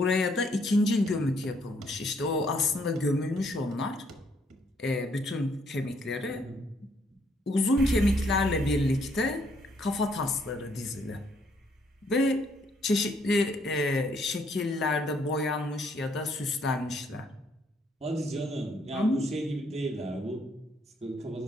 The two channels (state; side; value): normal; both; correlation 0.69